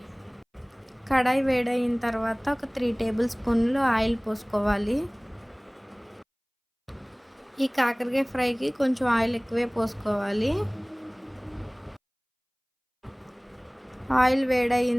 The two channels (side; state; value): both; identical; correlation 1.00